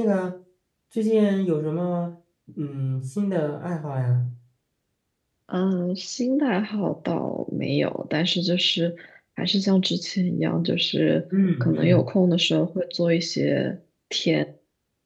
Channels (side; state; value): both; identical; correlation 1.00